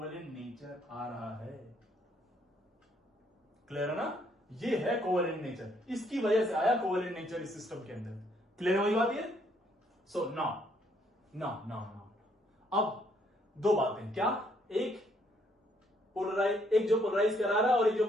नेचर आ रहा है। क्लियर है ना? ये है कोवेलेंट नेचर, इसकी वजह से आया कोवेलेंट नेचर इस सिस्टम के अंदर। क्लियर है वही बात ये? सो नाउ अब दो बातें, क्या? एक जो पोलराइज करा रहा है और एक जो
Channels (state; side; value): normal; both; correlation 0.69